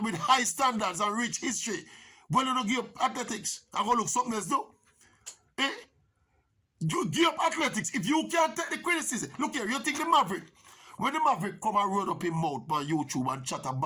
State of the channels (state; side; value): identical; both; correlation 1.00